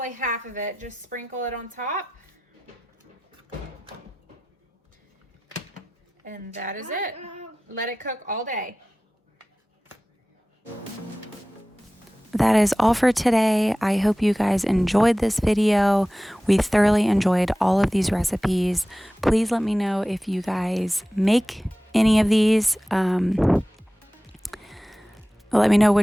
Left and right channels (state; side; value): normal; both; correlation 0.96